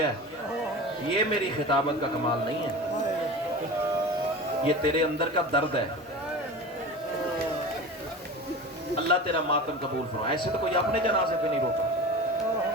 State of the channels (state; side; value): normal; both; correlation 0.32